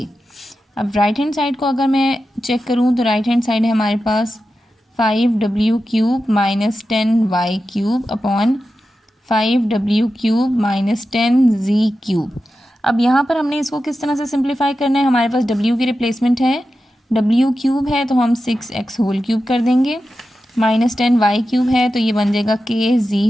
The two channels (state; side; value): normal; both; correlation 0.92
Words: अब राइट हैंड साइड को अगर मैं चेक करूँ तो राइट हैंड साइड है हमारे पास 5W cube minus 10Y cube upon 5W cube minus 10Z cube. अब यहाँ पर हमने इसको किस तरह से सिंप्लीफाई करना है? हमारे पास W की रिप्लेसमेंट है, W क्यूब है तो हम 6x होल क्यूब कर देंगे, माइनस 10Y क्यूब है तो ये बन जाएगा